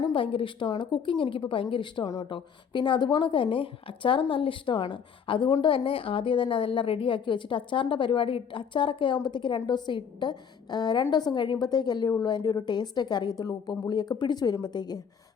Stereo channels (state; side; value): quieter; right; 7.1 dB